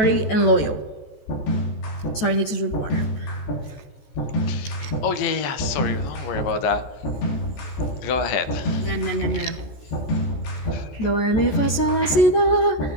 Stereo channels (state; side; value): late; right; 14 ms